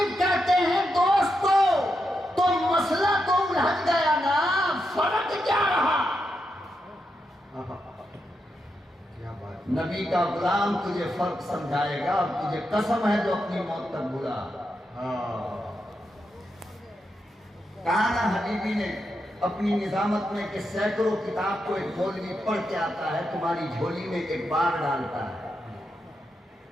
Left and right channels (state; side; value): normal; both; correlation 0.85